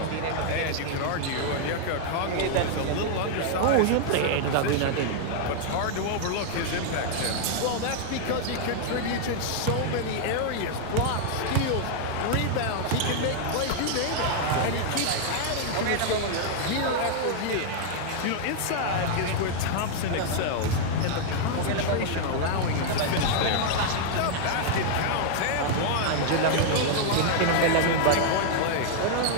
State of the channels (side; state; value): both; different; correlation -0.01